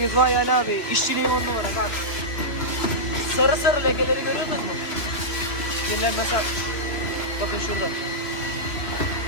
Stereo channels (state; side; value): late; right; 3.3 ms